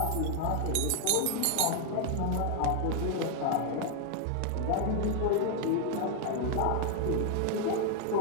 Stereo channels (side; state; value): both; different; correlation 0.00